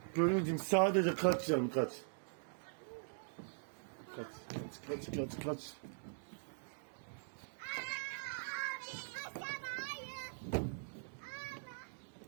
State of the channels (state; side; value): silent; left; digital silence